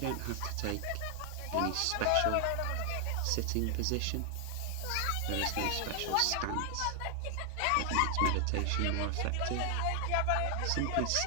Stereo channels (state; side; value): different; both; correlation 0.00